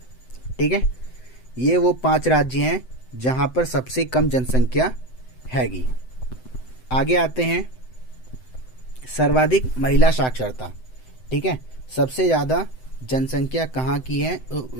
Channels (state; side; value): late; right; 7.8 ms